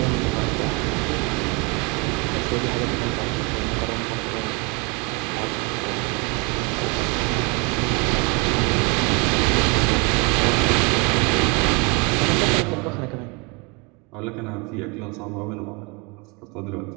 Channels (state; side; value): quieter; left; 30.7 dB